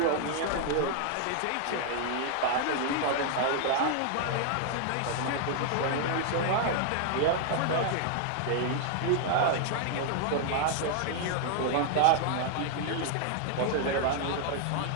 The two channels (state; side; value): different; both; correlation 0.00